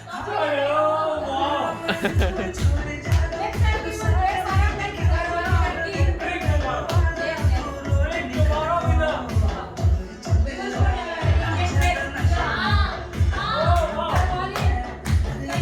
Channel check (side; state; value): both; identical; correlation 1.00